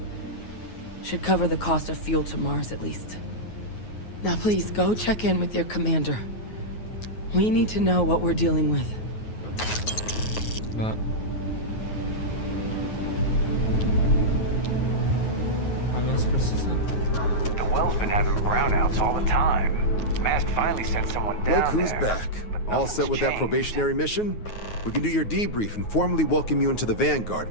Should cover the cost of fuel to Mars at least. Now please, go check in with your commander. We need to know what we're dealing with. But how long precision? The well's been having brownouts all the time. Mast finally sent someone down Look who's there, back. but All set nothing's with that changed. probationary mission? We can do your debrief and formally welcome you into the Vanguard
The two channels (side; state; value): right; late; 9.4 ms